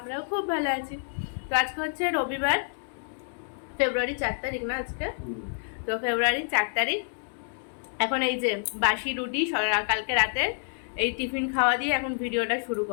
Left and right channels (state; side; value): silent; right; digital silence